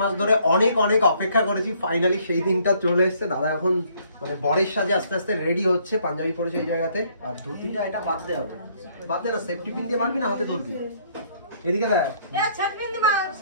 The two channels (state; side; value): inverted; both; correlation -0.64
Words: মাস ধরে অনেক অনেক অপেক্ষা করেছি, ফাইনালি সেই দিনটা চলে এসেছে। দাদা এখন মানে বরের সাজে আস্তে আস্তে রেডি হচ্ছে, পাঞ্জাবি পরেছে এই জায়গাতে। আর ধুতিটা এটা বাদ দে হবে, বাদ দে না। সেফটি পিন দিয়ে মারবি না হাতে ধরবি? এদিকে দেখ,